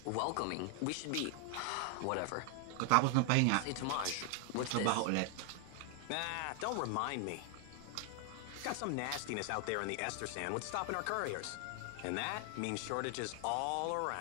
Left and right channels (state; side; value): different; both; correlation 0.00